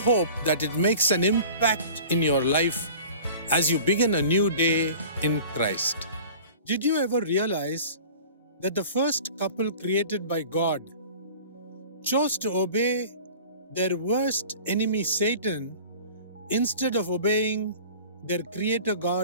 that it makes an impact in your life as you begin a new day in Christ. Did you ever realize that the first couple created by God chose to obey their worst enemy Satan instead of obeying their Creator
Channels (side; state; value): both; inverted; correlation -0.42